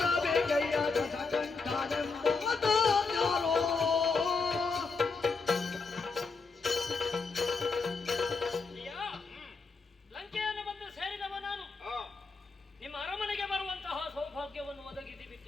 ದಶಕಂಠನೆಂಬಾತನ್ಯಾರೋ ಲಂಕೆಯನ್ನು ಬಂದು ಸೇರಿದವ ನಾನು. ನಿಮ್ಮ ಅರಮನೆಗೆ ಬರುವಂತಹ ಸೌಭಾಗ್ಯವನ್ನು ಒದಗಿಸಿ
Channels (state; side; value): quieter; right; 4.4 dB